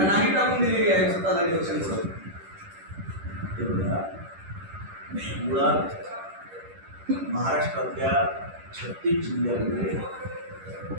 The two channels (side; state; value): left; late; 10 ms